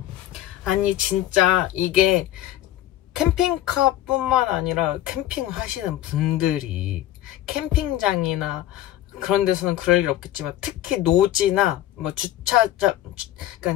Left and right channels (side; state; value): right; quieter; 13.5 dB